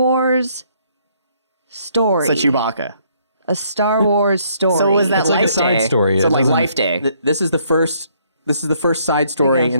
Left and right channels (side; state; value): both; inverted; correlation -0.67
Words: story. So Chewbacca. A Star Wars story. So was that It's like a Life side Day? story. So It like doesn't- Life Day. This is the first side story